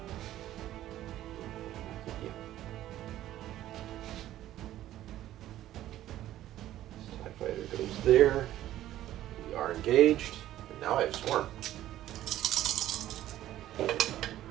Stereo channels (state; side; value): quieter; left; 13.4 dB